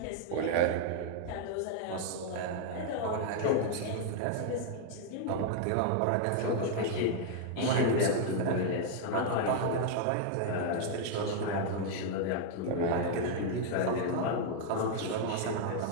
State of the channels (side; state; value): both; different; correlation 0.00